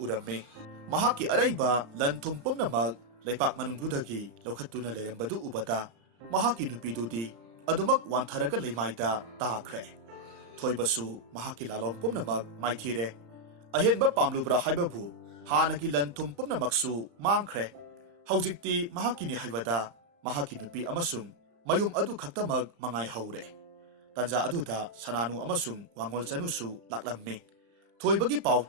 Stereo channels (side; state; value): left; late; 35 ms